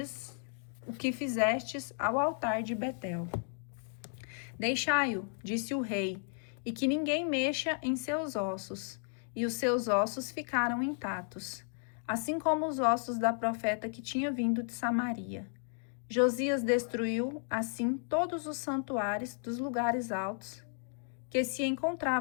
fizestes ao altar de Betel. Deixai-o, disse o rei, e que ninguém mexa em seus ossos. E os seus ossos ficaram intactos, assim como os ossos da profeta que tinha vindo de Samaria. Josias destruiu, assim, todos os santuários dos lugares altos que se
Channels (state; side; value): silent; right; 55 dB below the other